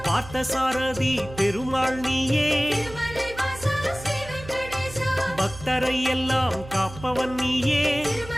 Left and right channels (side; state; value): right; noise; hum, 15 dB below the sound